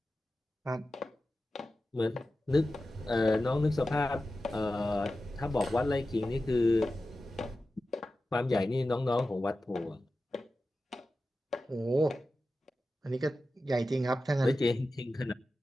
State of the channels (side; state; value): both; normal; correlation 0.93